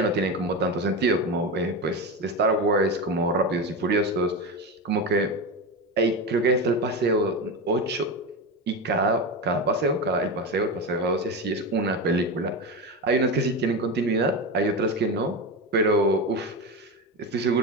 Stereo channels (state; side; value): normal; both; correlation 0.19